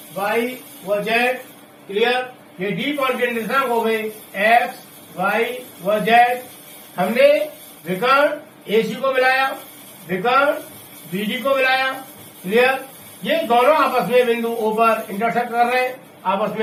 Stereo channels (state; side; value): identical; both; correlation 1.00